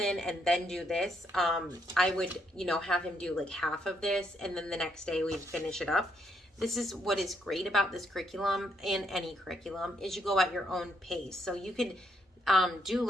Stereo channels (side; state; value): both; normal; correlation 0.75